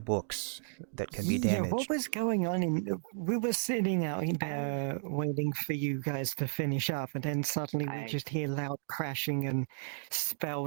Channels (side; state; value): left; silent; digital silence